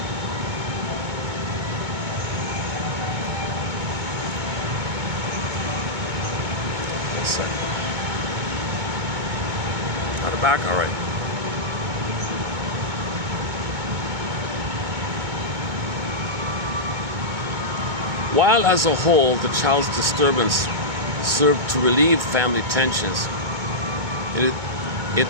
One second. Got it back? All right. While as a whole, the child's disturbance served to relieve family tensions, it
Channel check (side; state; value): left; late; 2.2 ms